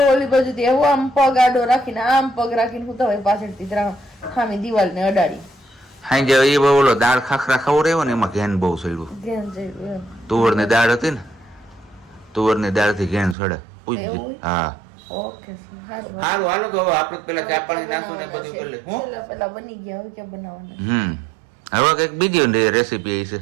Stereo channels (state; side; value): drops out; left; at 13.4 s